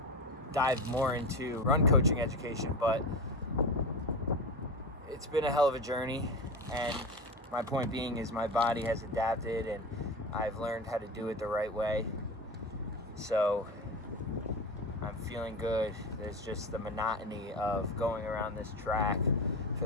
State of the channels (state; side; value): normal; both; correlation 0.24